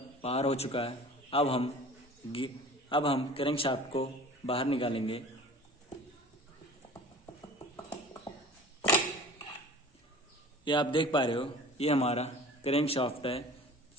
बाहर हो चुका है। अब हम क्रैंक शाफ्ट को बाहर निकालेंगे। ये आप देख पा रहे हो ये हमारा क्रैंक शाफ्ट है,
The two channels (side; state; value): both; normal; correlation 0.42